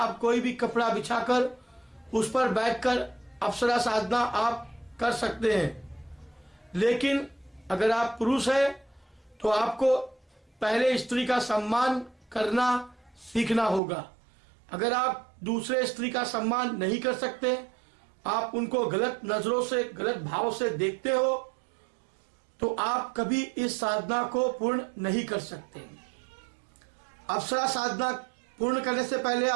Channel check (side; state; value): left; drops out; at 13.8 s